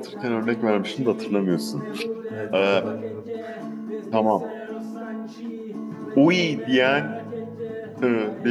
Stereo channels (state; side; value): identical; both; correlation 1.00